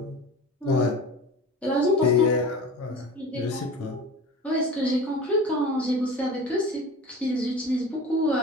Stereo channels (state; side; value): normal; both; correlation 0.37